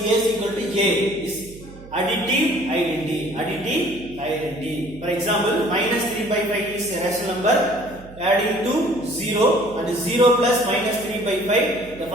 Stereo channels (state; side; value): noise; right; hum, 19 dB below the sound